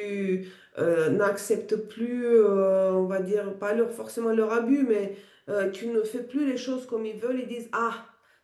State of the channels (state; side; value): identical; both; correlation 1.00